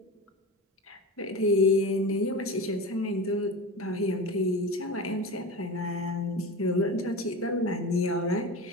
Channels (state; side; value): normal; both; correlation 0.28